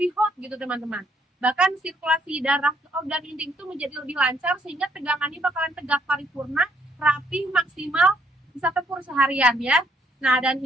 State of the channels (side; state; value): both; normal; correlation 0.70